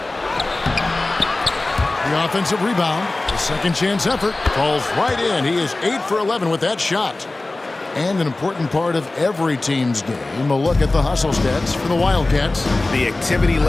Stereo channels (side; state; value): right; quieter; 3.0 dB